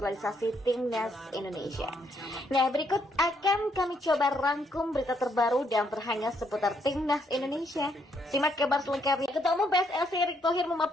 timnas Indonesia. Nah, berikut akan kami coba rangkum berita terbaru dan terhangat seputar timnas Indonesia. Simak kabar selengkapnya. Ketua Umum PSSI Erick Thohir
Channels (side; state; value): both; normal; correlation 0.73